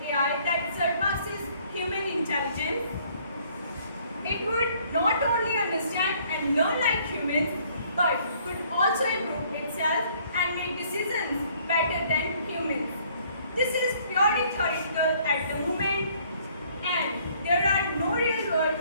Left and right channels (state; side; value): inverted; both; correlation -0.62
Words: AI that surpasses human intelligence. It would not only understand and learn like humans, but could also improve itself and make decisions better than humans. This is purely theoretical at the moment, and there are no real-world